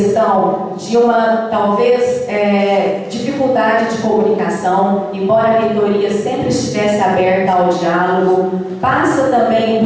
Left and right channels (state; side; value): identical; both; correlation 1.00